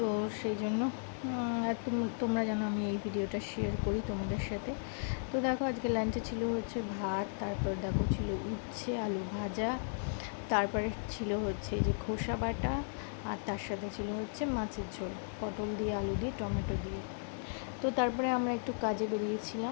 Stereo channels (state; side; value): silent; right; digital silence